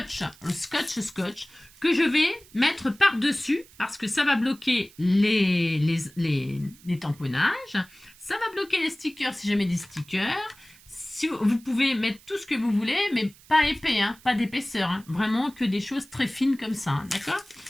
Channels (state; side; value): noise; right; hiss, 25 dB below the sound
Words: Le scotch que je vais mettre par-dessus parce que ça va bloquer les tamponnages. Ça va bloquer les stickers si jamais des stickers. Si vous pouvez mettre tout ce que vous voulez, mais pas épais, pas d'épaisseur. Vraiment que des choses très fines comme ça. D'accord?